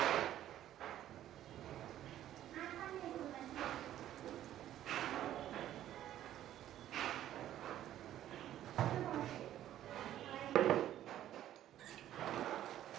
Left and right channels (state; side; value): quieter; left; 12.3 dB